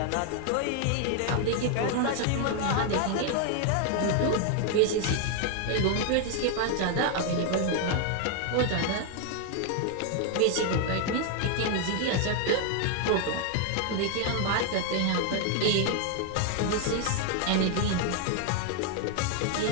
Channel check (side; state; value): both; different; correlation 0.00